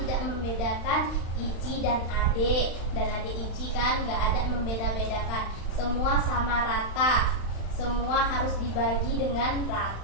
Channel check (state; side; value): late; right; 35 ms